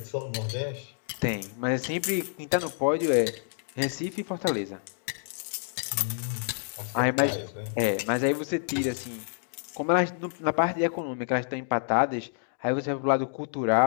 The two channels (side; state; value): right; silent; digital silence